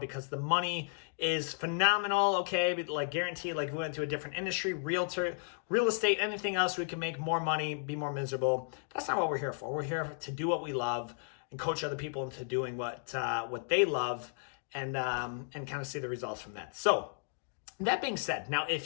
the money is phenomenal, okay, but like guaranteed, like we went to a different industry, real estate, anything else, we can make more money, be more miserable. That's not what we're here for. We're here to do what we love and coach other people into doing what they love, and kind of see the results from that. So that being said, now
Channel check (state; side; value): silent; right; digital silence